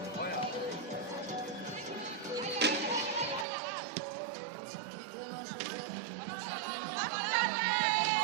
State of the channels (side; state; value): left; drops out; at 3.5 s